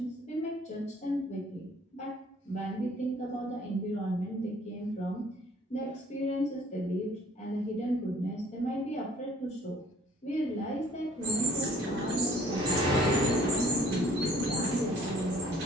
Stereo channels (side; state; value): both; normal; correlation 0.56